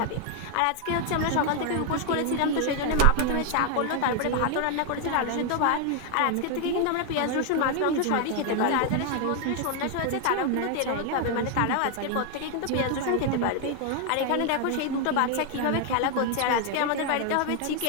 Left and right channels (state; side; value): different; both; correlation 0.01